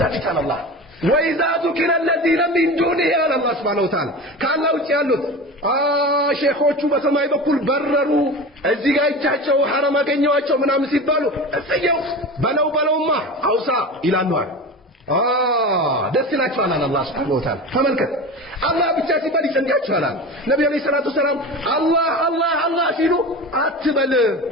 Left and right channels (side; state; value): both; normal; correlation 0.30